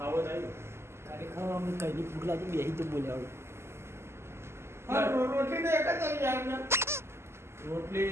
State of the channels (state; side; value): late; left; 0.12 ms